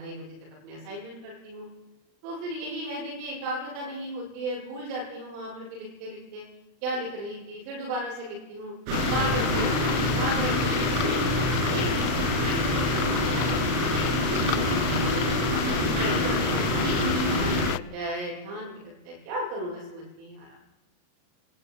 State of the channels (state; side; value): late; left; 40 ms